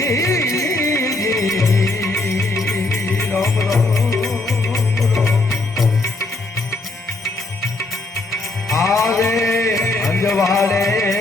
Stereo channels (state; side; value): quieter; right; 3.0 dB